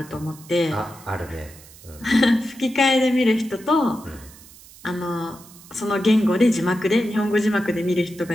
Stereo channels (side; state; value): right; noise; hiss, 21 dB below the sound